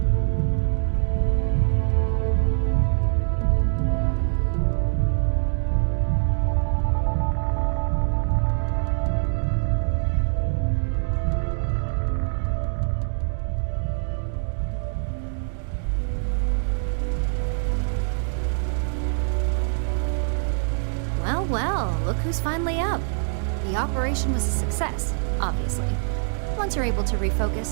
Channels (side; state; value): left; silent; digital silence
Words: Well, well, look who's finally up. The operation was a success, obviously. Once you're able to